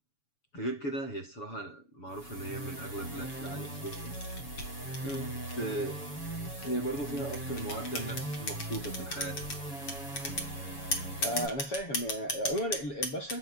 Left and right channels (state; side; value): late; right; 7.1 ms